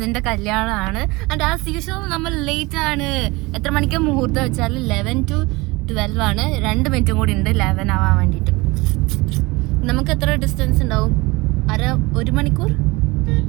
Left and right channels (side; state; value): left; quieter; 23.3 dB